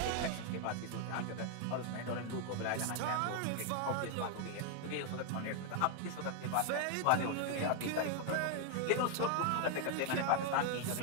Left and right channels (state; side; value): different; both; correlation 0.00